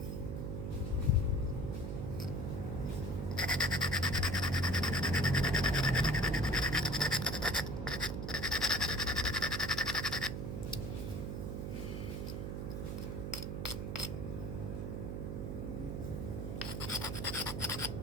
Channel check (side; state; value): right; noise; hum, 4 dB below the sound